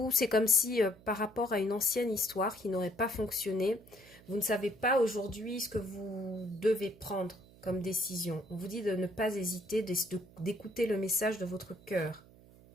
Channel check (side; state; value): right; noise; hum, 23 dB below the sound